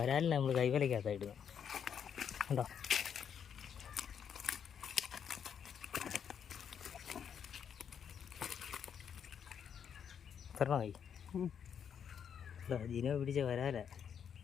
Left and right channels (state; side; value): quieter; right; 7.9 dB